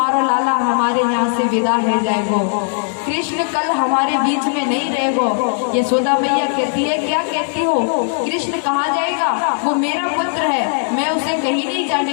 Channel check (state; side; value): silent; right; 68 dB below the other